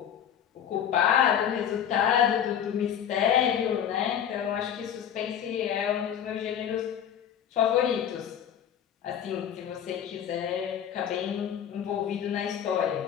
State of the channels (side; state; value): right; quieter; 9.2 dB